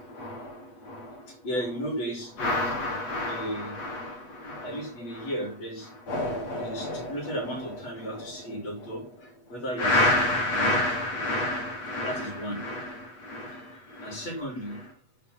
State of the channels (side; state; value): right; late; 8.1 ms